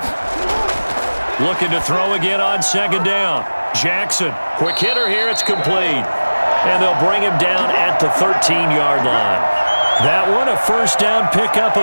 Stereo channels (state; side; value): inverted; both; correlation -1.00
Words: Looking to throw again on second down. Jackson, quick hitter here, it's complete. And they'll bring him down at the 13-yard line. That one, a first down pickup